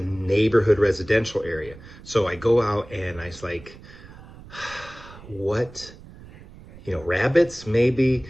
residential area. So I go out and I was like, what? Rabbits maybe,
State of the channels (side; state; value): right; noise; rumble, 19 dB below the sound